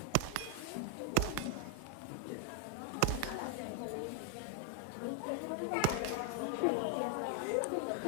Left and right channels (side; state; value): both; different; correlation 0.01